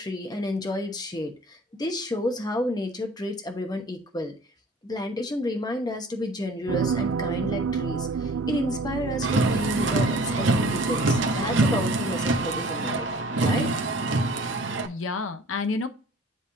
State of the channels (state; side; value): normal; both; correlation 0.49